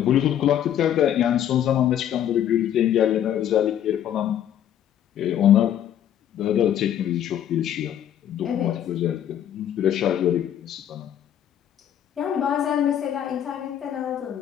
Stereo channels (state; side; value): quieter; right; 10.4 dB